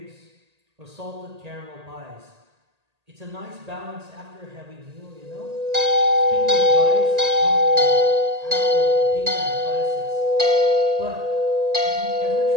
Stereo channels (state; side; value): late; left; 1.8 ms